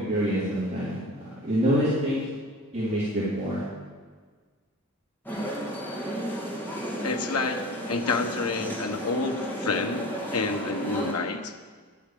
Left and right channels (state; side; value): normal; both; correlation 0.36